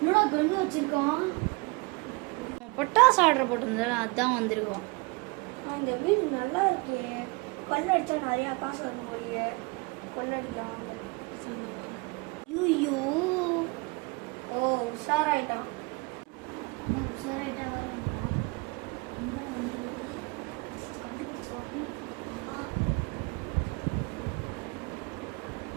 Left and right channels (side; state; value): left; quieter; 27.9 dB